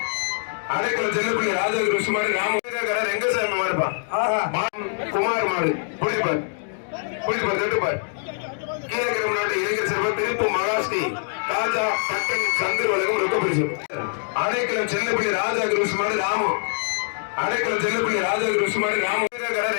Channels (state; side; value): silent; right; digital silence